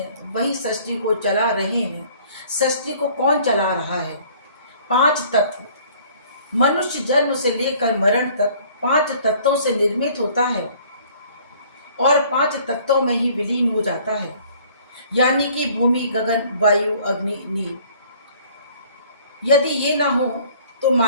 वही सृष्टि को चला रहे हैं। सृष्टि को कौन चला रहा है? 5 तत्व। मनुष्य जन्म से लेकर मरण तक 5 तत्वों से निर्मित होता है और 5 तत्वों में ही विलीन हो जाता है, यानी कि भूमि, गगन, वायु, अग्नि, नील। यदि ये ना हो तो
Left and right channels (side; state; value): both; inverted; correlation -0.55